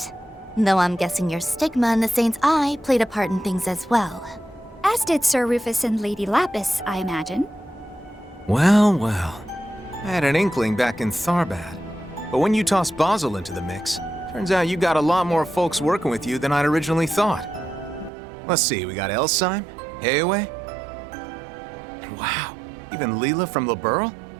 Though I'm guessing your stigma in the Saint's Eye played a part in things as well. As did Sir Rufus and Lady Lapis, I imagine. Well, well. I had an inkling back in Tharbad. But when you toss Basil into the mix, turns out you got a lot more folks working with you than I'd originally thought. Let's see, we got Elsheim, Heaway. Wow, even Leela from Liberl?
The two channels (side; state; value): left; drops out; at 18.1 s